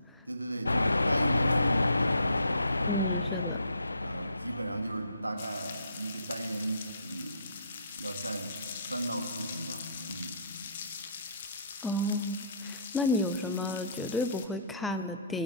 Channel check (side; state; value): both; inverted; correlation -0.56